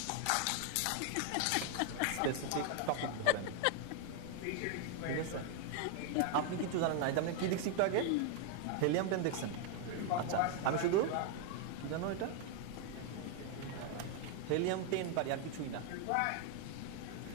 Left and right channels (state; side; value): different; both; correlation 0.01